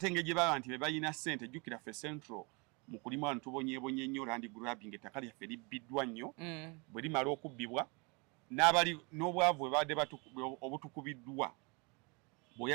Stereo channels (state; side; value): quieter; left; 30.2 dB